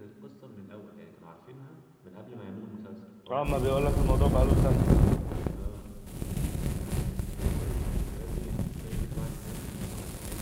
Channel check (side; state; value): both; identical; correlation 1.00